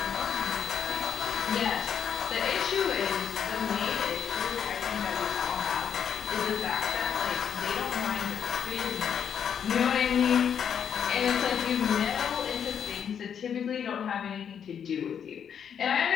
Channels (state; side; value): quieter; right; 8.0 dB